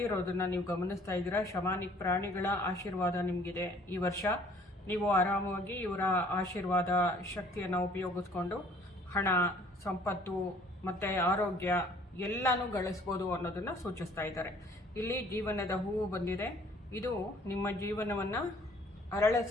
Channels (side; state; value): both; normal; correlation 0.56